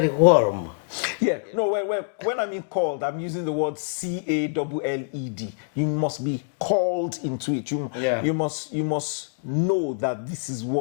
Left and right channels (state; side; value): silent; right; digital silence